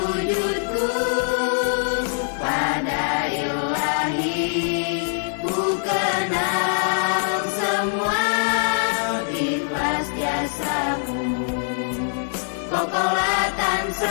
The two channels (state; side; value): silent; right; digital silence